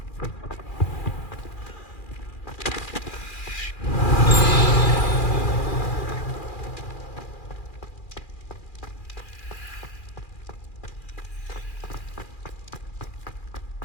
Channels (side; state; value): right; late; 2.4 ms